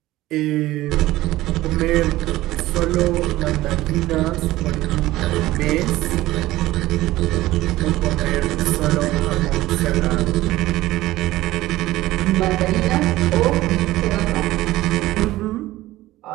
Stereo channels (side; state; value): left; quieter; 16.8 dB